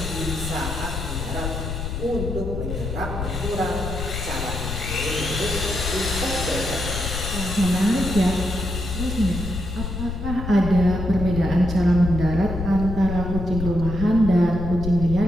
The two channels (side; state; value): left; noise; rumble, 5 dB below the sound